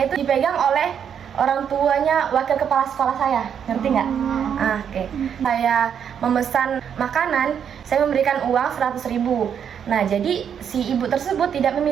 itu dipegang oleh orang tuanya wakil kepala sekolah saya, ngerti nggak? Oke. Saya memesan makanan, saya memberikan uang 100.000. Nah, jadi si ibu tersebut tidak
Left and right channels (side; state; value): left; quieter; 8.1 dB